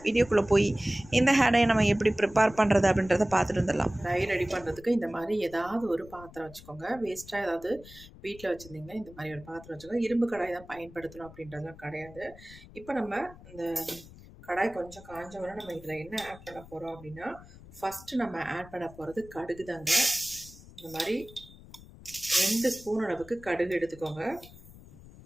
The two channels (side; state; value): left; noise; rumble, 19 dB below the sound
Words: வீடியோக்குள்ளே போய் இந்த ஹேர் டை நம்ம எப்படி ப்ரிப்பேர் பண்ணுறது அப்படின்றத பார்த்துட்டு வந்துடலாம். டை ரெடி பண்ணுறதுக்கு இந்த மாதிரி ஏதாவது ஒரு பாத்திரம் வச்சுக்கோங்க. வேஸ்ட்டாக ஏதாவது வீட்டில் வச்சுருந்தீங்கன்னா இந்த மாதிரி ஒரு பாத்திரம் வச்சுக்கோங்க. இரும்பு கடாய் தான் பயன்படுத்தணும் அப்படின்றதுலாம் கிடையாது. இப்போ நம்ம இந்த கடாய் கொஞ்சம் காஞ்ச உடனே நம்ம இதில் என்ன ஆட் பண்ண போகிறோம் அப்படின்னா, ஃபஸ்ட்டு நம்ம ஆட் பண்ண போகிறது கடுகு தாங்க. இந்த மாதிரி 2 ஸ்பூன் அளவுக்கு கடுகு எடுத்துக்கோங்க.